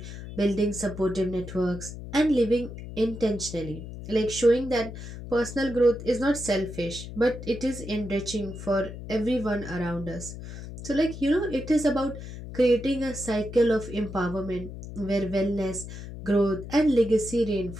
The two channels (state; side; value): noise; left; hum, 11 dB below the sound